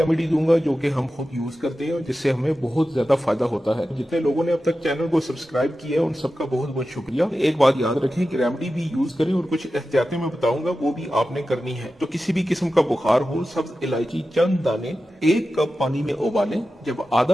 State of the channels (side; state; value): both; normal; correlation 0.93